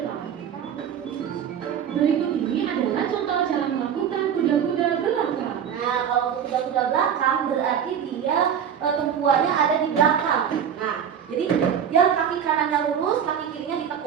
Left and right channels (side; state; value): left; quieter; 8.4 dB